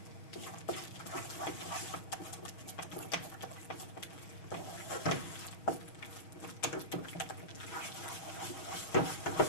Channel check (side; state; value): right; late; 6.3 ms